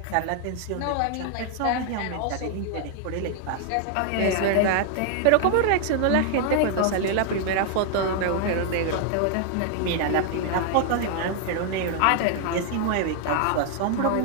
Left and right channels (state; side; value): different; both; correlation 0.00